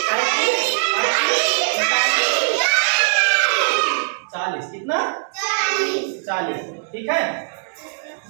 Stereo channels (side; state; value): left; silent; digital silence